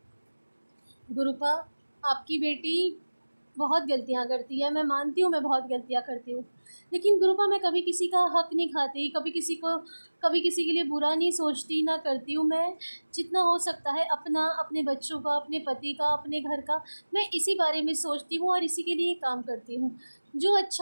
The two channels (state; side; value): inverted; both; correlation -1.00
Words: गुरुपा, आपकी बेटी बहुत गलतियाँ करती है, मैं मानती हूँ मैं बहुत गलतियाँ करती हूँ, लेकिन गुरुपा मैं कभी किसी का हक नहीं खाती, कभी किसी के लिए बुरा नहीं सोचती, ना करती हूँ। मैं जितना हो सकता है अपना, अपने बच्चों का, अपने पति का, अपने घर का, मैं इसी बारे में सोचती हूँ और इसी के लिए काम करती हूँ। जो